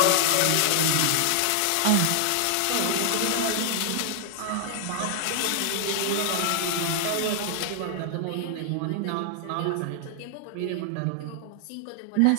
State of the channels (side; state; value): both; different; correlation 0.00